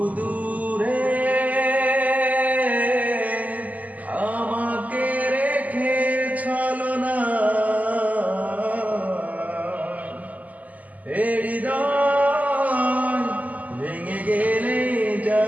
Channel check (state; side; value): late; left; 0.076 ms